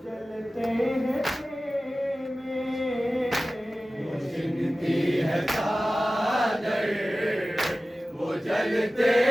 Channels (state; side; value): normal; both; correlation 0.96